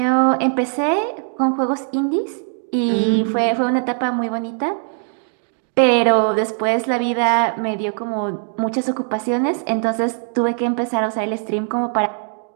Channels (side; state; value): left; silent; 60 dB below the other